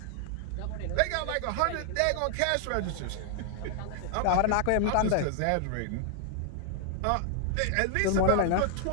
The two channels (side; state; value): both; different; correlation 0.00